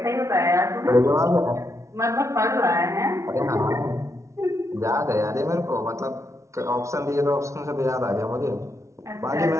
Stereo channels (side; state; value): left; late; 0.14 ms